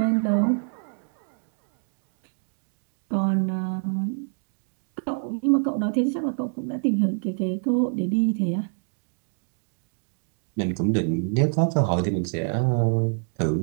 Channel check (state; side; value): silent; left; 61 dB below the other